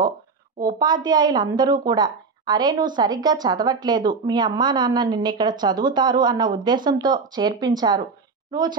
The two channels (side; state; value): left; quieter; 4.7 dB